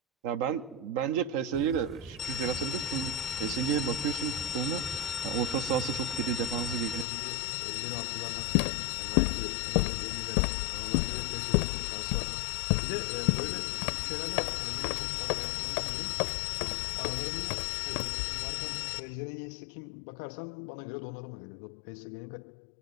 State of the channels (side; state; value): right; drops out; at 7.1 s